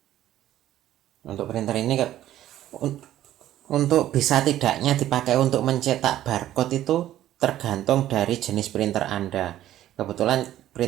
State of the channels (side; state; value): left; quieter; 13.0 dB